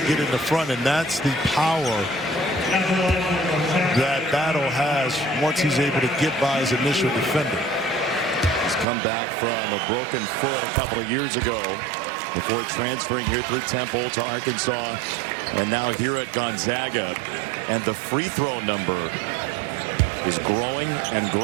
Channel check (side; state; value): left; drops out; at 8.8 s